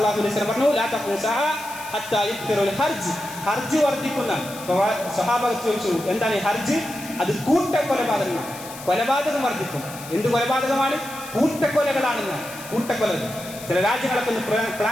അലൈഹി വസല്ലം പറഞ്ഞു, ലാ തഖൂമു സഅ ഹത്താ യുക്തിറുൽ ഹർജ്. ഹർജ് വർദ്ധിക്കുന്ന. സ്വഹാബകൾ ചോദിച്ചു, എന്താണ് ഈ ഹർജ്? അത് കൂട്ടക്കൊലപാതകമാണ്. കൊലപാതകം വർദ്ധിക്കും. എന്ത് കൊലപാതകമാണ്? കൂട്ടക്കൊലകളാണെന്ന്. കൂട്ടക്കൊലകൾ ചില രാജ്യങ്ങളൊക്കെ ഒന്ന്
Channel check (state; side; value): noise; left; hiss, 14 dB below the sound